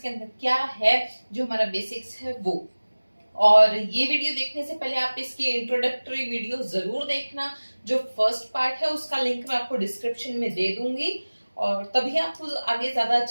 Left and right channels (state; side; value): inverted; both; correlation -1.00